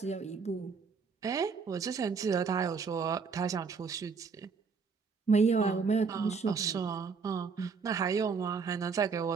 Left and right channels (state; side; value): quieter; left; 5.3 dB